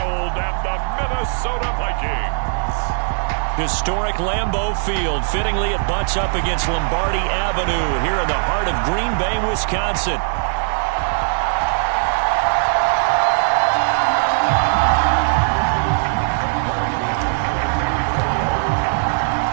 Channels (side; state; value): left; silent; digital silence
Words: and the Minnesota Vikings. Historic Lambeau Field. Fittingly, it butts up against Lombardi Avenue here in the heart of Green Bay, Wisconsin.